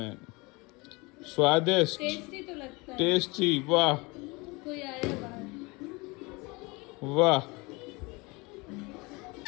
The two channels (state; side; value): quieter; right; 25.9 dB